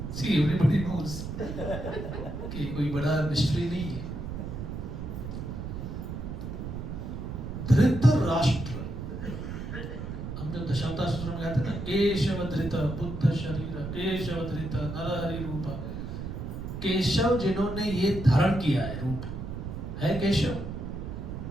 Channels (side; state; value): right; noise; rumble, 6 dB below the sound